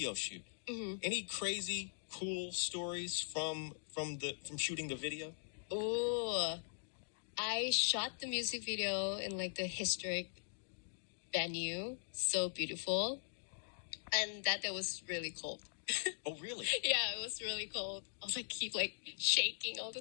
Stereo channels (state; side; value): silent; right; digital silence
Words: shoot. Mm-hmm. Any crazy, cool stories from shooting the video? Oh, I shot the music video in like the historic venue, so beautiful, and that was really cold. Oh, really? Yeah, it was really cold. I was like keep shaking all the